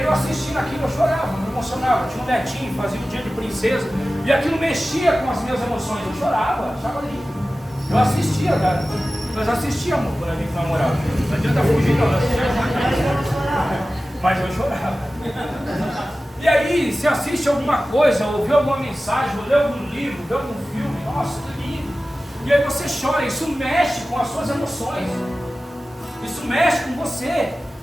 eu assistindo aquilo, eu chorava, me emocionava. Eu tinha um netinho, fazia um dia de princesa, e aquilo mexia com as minhas emoções. Eu chorava, achava lindo. Eu assistia, cara. Nós assistíamos quando a gente namorava. Não adianta fugir, não. Mas eu chorava. E aí, se assiste alguma coisa, ou vê alguma mensagem, ou lê algum livro, vê algum filme, nossa, que lindo. E aí você chora, isso mexe com as suas emoções. Isso mexe com você.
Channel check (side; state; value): both; normal; correlation 0.96